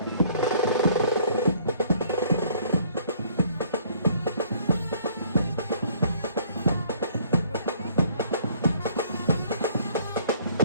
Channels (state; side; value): inverted; both; correlation -0.60